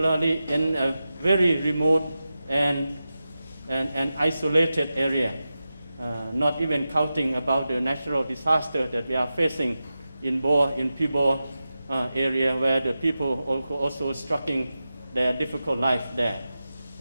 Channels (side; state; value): both; inverted; correlation -0.93